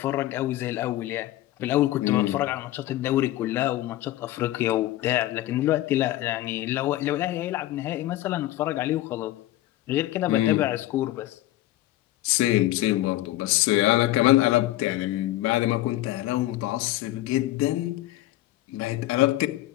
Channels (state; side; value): quieter; right; 15.5 dB